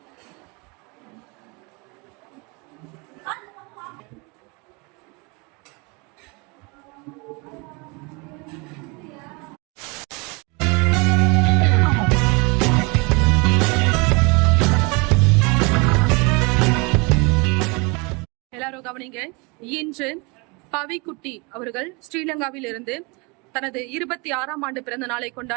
எல்லாரும் கவனிங்க. இன்று பவிக்குட்டி அவர்கள் ஸ்ரீலங்காவில் இருந்து தனது 26ஆம் ஆண்டு பிறந்த நாளை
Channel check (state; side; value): quieter; left; 29.1 dB